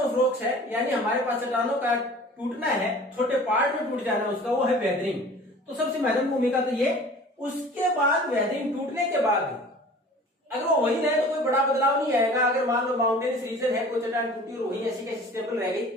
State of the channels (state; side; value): normal; both; correlation 0.45